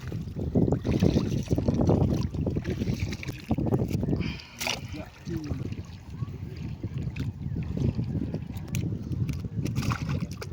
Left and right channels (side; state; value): both; identical; correlation 1.00